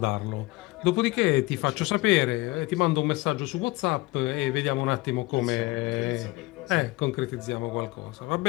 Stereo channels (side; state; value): right; quieter; 21.5 dB